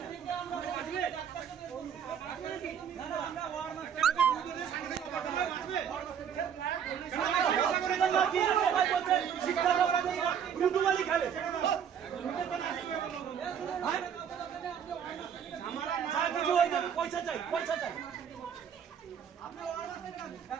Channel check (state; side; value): quieter; left; 8.1 dB